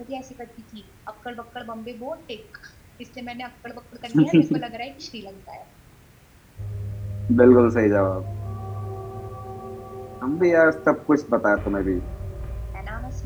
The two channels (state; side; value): identical; both; correlation 1.00